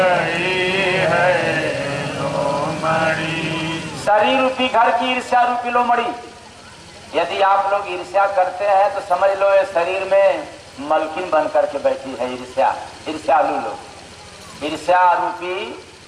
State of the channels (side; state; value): both; identical; correlation 1.00